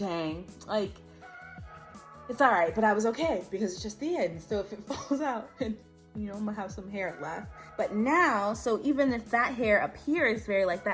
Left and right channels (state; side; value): identical; both; correlation 1.00